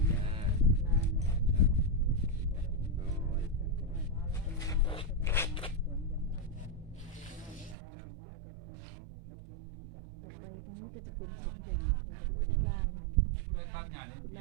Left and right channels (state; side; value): drops out; left; at 7.8 s